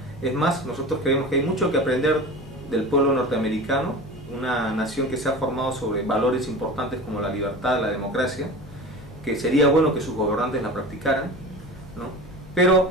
Es más, nosotros creemos que hay mucho que aprender del pueblo norteamericano, una nación que se ha formado sobre valores importantes como la libertad, la democracia, que sería bueno que sus gobernantes la practicaran, ¿no?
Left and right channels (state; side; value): noise; left; hum, 19 dB below the sound